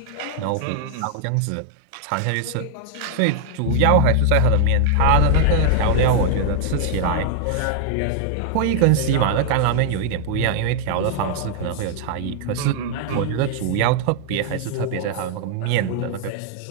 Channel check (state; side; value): different; both; correlation -0.01